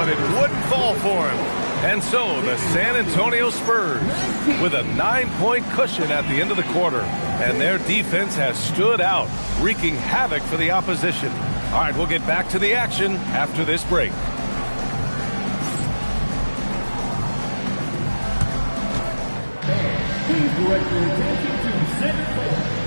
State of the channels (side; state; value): both; inverted; correlation -1.00